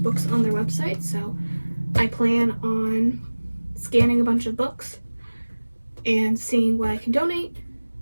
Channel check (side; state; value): both; inverted; correlation -1.00